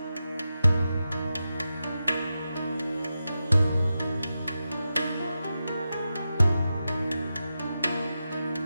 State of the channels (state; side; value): inverted; both; correlation -0.91